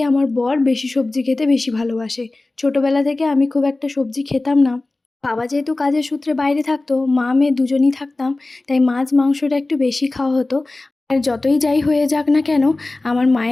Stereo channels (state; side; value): quieter; right; 3.0 dB